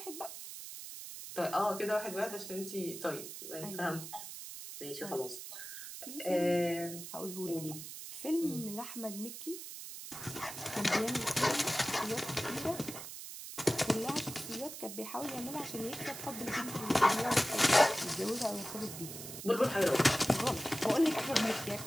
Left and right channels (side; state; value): right; noise; hiss, 10 dB below the sound